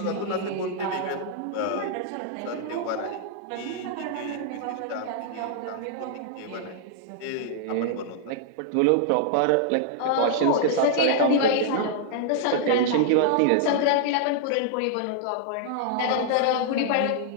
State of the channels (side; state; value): both; different; correlation -0.01